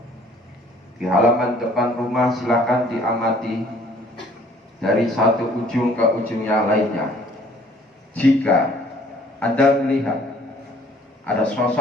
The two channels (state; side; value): normal; both; correlation 0.57